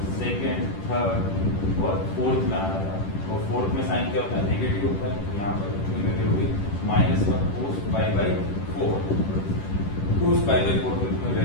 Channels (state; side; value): late; right; 10 ms